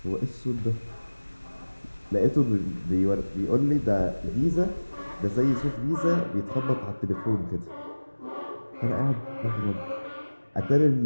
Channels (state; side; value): inverted; both; correlation -1.00